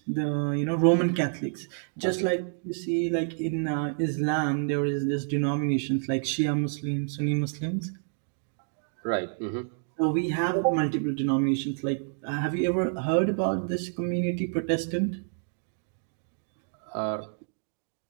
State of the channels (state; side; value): silent; left; 59 dB below the other